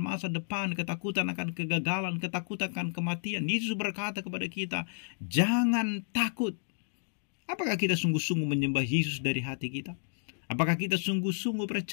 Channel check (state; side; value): silent; right; digital silence